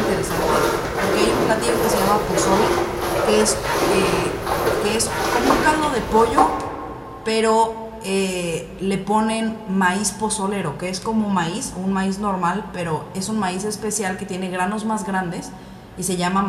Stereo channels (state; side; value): identical; both; correlation 1.00